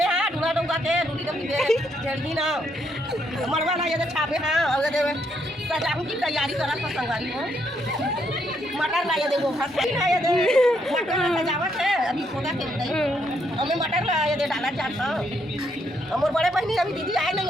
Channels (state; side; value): normal; both; correlation 0.75